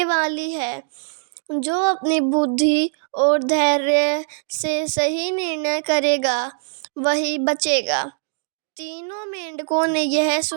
वाली है। जो अपनी बुद्धि और धैर्य से सही निर्णय करेगा, वही बचेगा। तीनों मेंढकों ने यह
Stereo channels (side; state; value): left; silent; digital silence